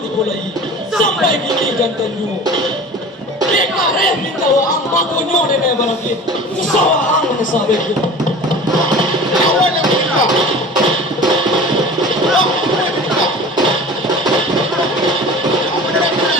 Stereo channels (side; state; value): both; normal; correlation 0.39